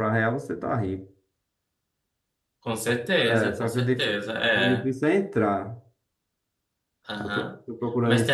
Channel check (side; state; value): both; identical; correlation 1.00